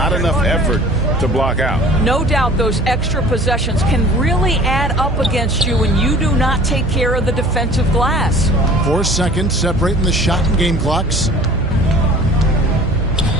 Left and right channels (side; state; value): right; noise; hum, 4 dB below the sound